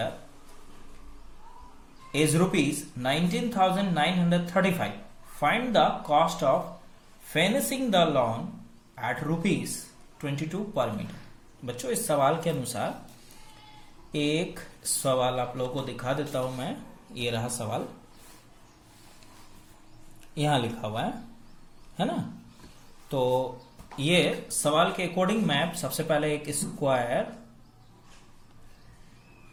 is ₹19,935. Find the cost of finishing the lawn at ₹22 per meter. बच्चों इस सवाल के अनुसार एक सवाल आप लोगों को दिखा देता हूं मैं। ये रहा सवाल, यहां लिखा हुआ है ना। तो ये सवाल के अकॉर्डिंग मैं सबसे पहले एक स्क्वायर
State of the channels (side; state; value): both; identical; correlation 1.00